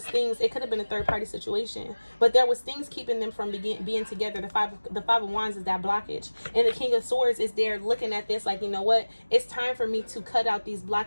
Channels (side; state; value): both; inverted; correlation -1.00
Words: things. It could have been a third-party situation, but there was things keeping them from being together. The five of Wands is that blockage, and the King of Swords is there looking at this like, you know what? It's time for me to cut out these